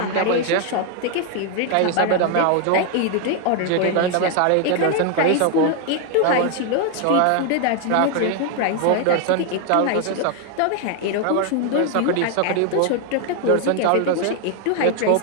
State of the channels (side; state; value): both; different; correlation 0.00